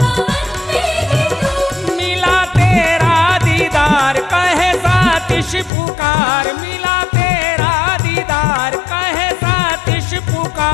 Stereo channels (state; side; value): drops out; right; at 5.7 s